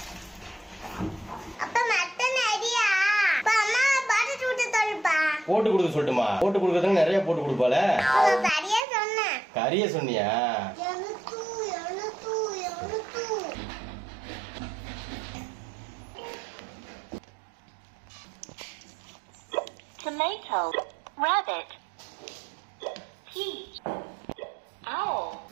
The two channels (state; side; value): drops out; left; at 8.8 s